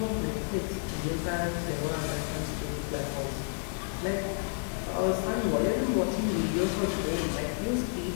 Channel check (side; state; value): right; silent; 57 dB below the other